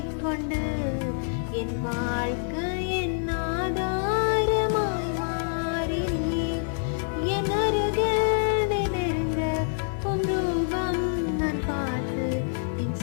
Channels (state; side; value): silent; right; 59 dB below the other